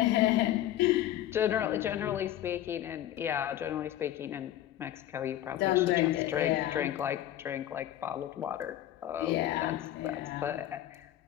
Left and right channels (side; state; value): right; quieter; 12.7 dB